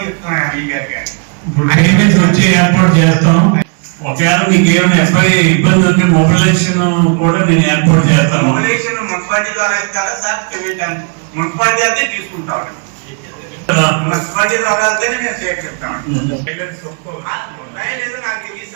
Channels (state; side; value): quieter; left; 39.2 dB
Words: చెప్తున్నాను ఈ గారు. ఇప్పుడు పేమెంట్స్ వచ్చి ఏర్పాటు చేస్తాం. ఒకవేళ మీకు ఏమైనా ఎఫ్ఐ ఇబ్బంది ఉంటే మొబిలైజేషన్ కూడా నేను ఏర్పాటు చేస్తాను. మొబిలైజేషన్ మున్సిపాలిటీలో వేస్తారా సార్? పేమెంట్ మున్సిపాలిటీ అయితే తీసుకుంటాం. మున్సిపాలిటీలో వెళ్తేనే మేము సేకరిస్తాం. లేదు నాకు తెలియదు